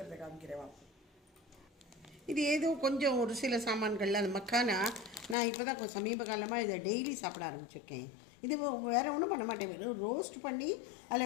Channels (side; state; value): right; drops out; at 5.4 s